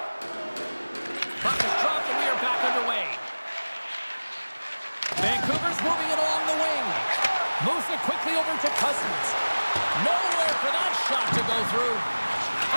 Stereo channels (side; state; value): both; inverted; correlation -1.00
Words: Puck is dropped, and we are back underway. Vancouver's moving it along the wing. Moves it quickly over to Cousins. Nowhere for that shot to go through.